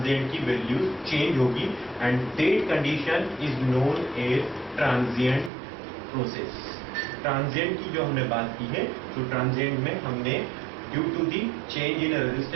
की वैल्यू चेंज होगी and that condition is known as transient process. Transient की जो हमने बात की है तो ट्रांजिएंट में हमने due to the change in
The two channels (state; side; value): drops out; left; at 5.5 s